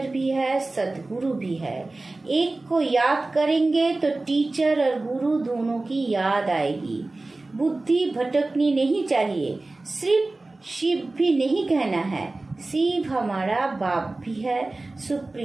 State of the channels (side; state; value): left; quieter; 3.1 dB